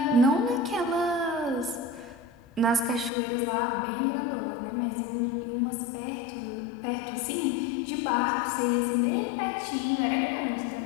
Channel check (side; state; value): right; drops out; at 3.1 s